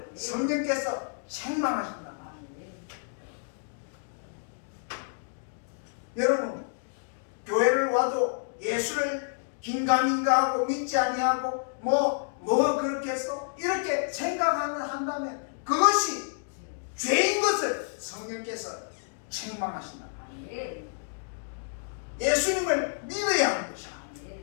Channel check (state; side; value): silent; right; digital silence